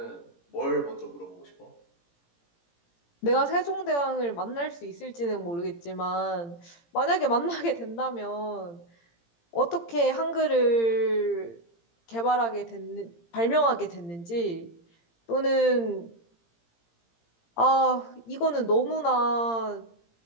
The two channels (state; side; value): late; right; 17 ms